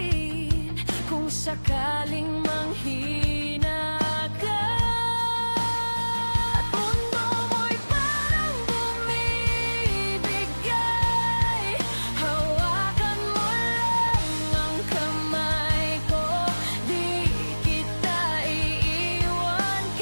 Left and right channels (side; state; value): both; inverted; correlation -1.00